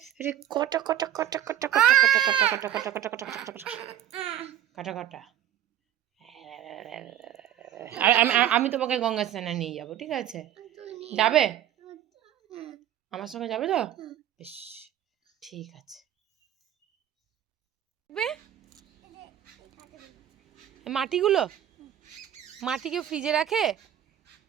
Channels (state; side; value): quieter; left; 11.1 dB